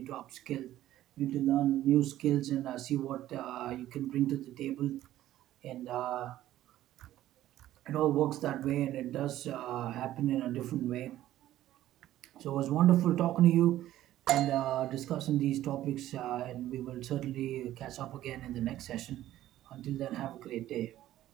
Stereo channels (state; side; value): quieter; left; 13.7 dB